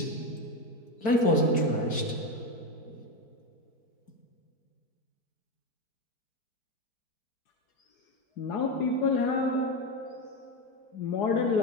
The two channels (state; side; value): late; right; 4.6 ms